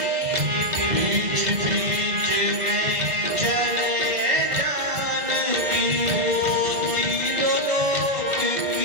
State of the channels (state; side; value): late; left; 1.5 ms